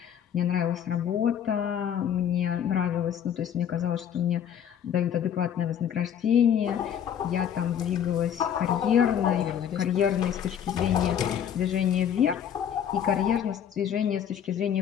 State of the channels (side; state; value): right; quieter; 9.0 dB